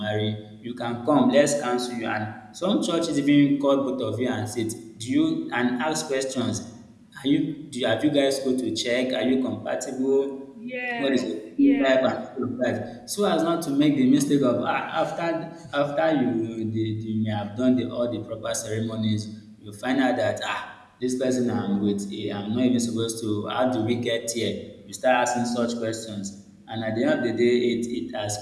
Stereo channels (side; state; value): both; identical; correlation 1.00